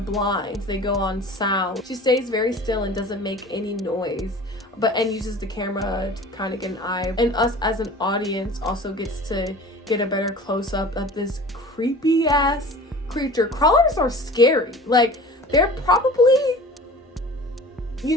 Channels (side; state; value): both; normal; correlation 0.41